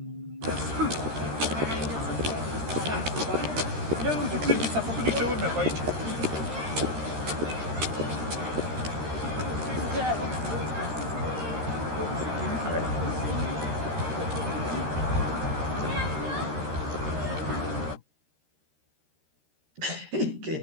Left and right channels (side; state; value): left; late; 13 ms